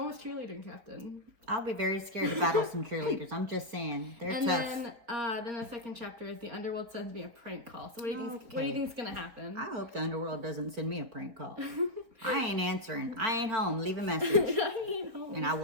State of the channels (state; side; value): late; left; 4.6 ms